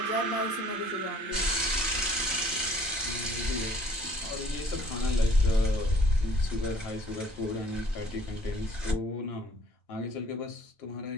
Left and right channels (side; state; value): both; normal; correlation 0.56